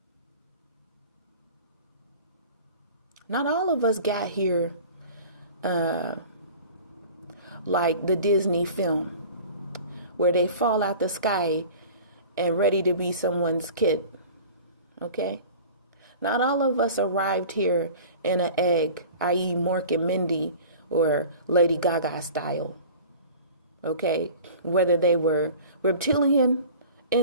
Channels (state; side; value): inverted; both; correlation -0.41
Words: Not all of us got here like the Disney film, where they fall out the sky and ready to be someone's kid. Okay? Not all of us arrived here in an egg, i.e. Mork and Mindy or Lady Gaga style. Okay? Whether they were reptilian